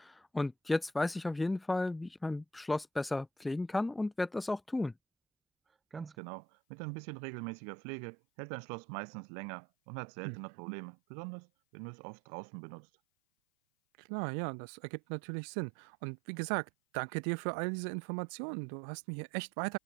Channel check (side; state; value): left; drops out; at 6.2 s